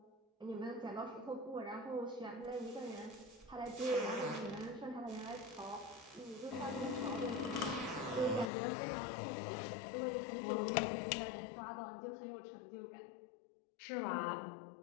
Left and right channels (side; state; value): right; drops out; at 8.5 s